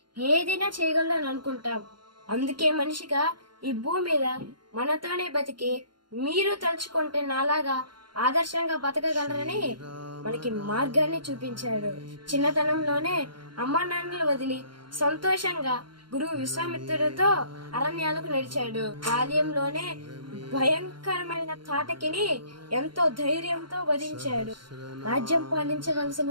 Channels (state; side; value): late; left; 0.72 ms